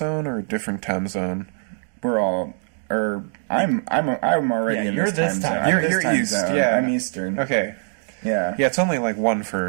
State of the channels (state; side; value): silent; left; 59 dB below the other